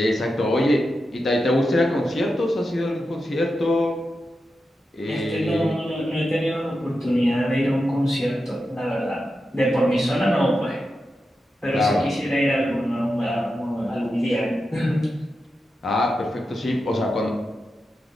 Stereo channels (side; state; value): both; normal; correlation 0.89